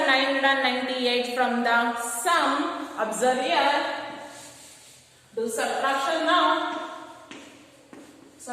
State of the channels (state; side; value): identical; both; correlation 1.00